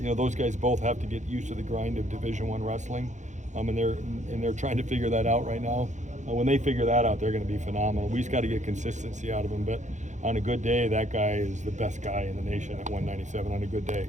Those guys both have to get used to the grind of Division I wrestling, and they're trying to figure that out right now. When they figure that out, they're going to be phenomenal. We just got to get consistency out of him. But on a good day, that guy is the best guy in the nation at 197 on a good day.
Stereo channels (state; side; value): late; left; 0.35 ms